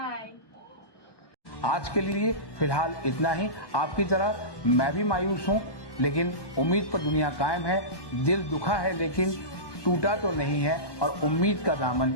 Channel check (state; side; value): late; right; 1.2 ms